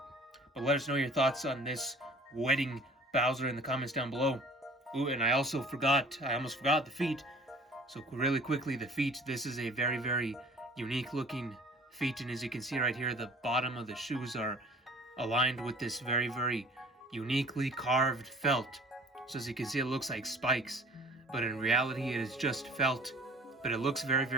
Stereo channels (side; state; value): both; normal; correlation 0.48